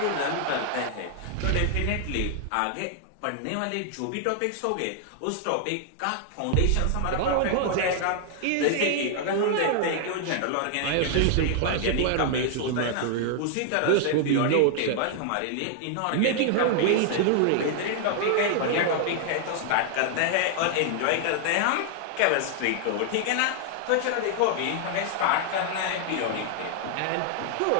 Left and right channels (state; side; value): different; both; correlation 0.00